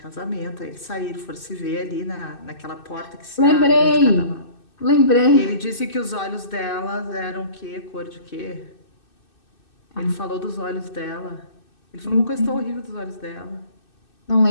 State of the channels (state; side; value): late; right; 2.6 ms